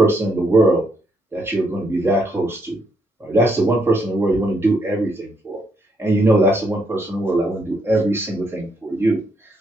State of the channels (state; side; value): normal; both; correlation 0.75